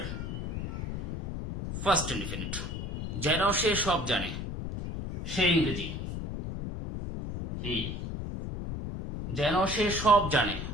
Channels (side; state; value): left; noise; rumble, 5 dB below the sound